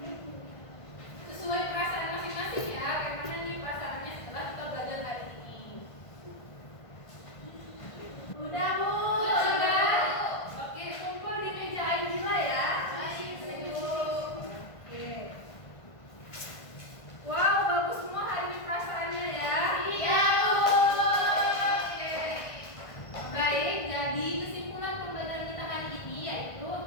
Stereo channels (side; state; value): right; late; 1.5 ms